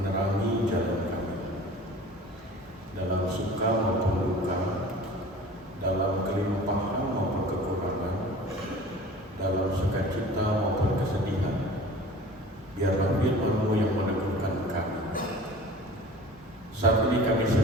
jalan kami. Dalam suka maupun duka, dalam kelimpahan maupun kekurangan, dalam sukacita maupun kesedihan, biarlah firman-Mu yang meneguhkan kami. Saat ini kami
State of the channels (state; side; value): normal; both; correlation 0.43